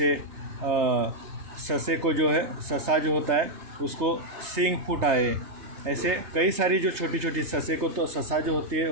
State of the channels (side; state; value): left; late; 3.3 ms